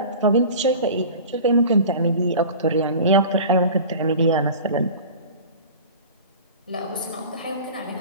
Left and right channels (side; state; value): both; inverted; correlation -0.38